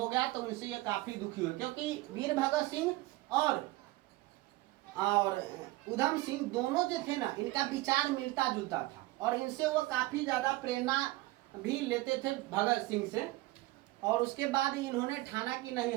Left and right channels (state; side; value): quieter; left; 19.3 dB